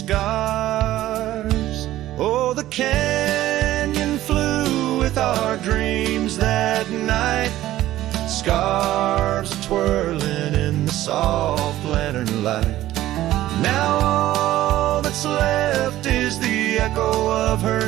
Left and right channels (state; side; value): quieter; left; 14.6 dB